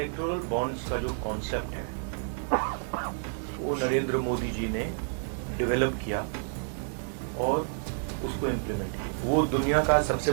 बॉन्ड्स का जो कॉन्सेप्ट है वो नरेंद्र मोदी जी ने डेवलप किया और उसको इम्प्लीमेंट किया. वो दुनिया का सबसे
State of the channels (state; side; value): silent; left; digital silence